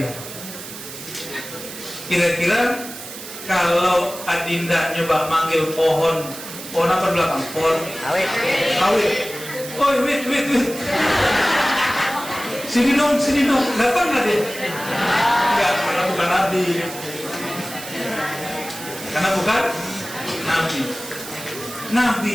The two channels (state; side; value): noise; right; hiss, 12 dB below the sound